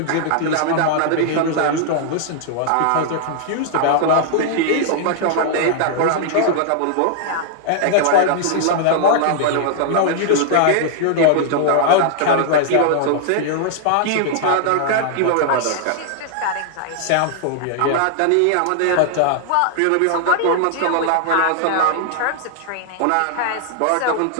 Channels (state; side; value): different; both; correlation -0.01